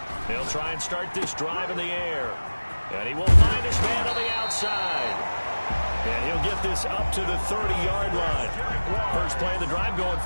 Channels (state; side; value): inverted; both; correlation -1.00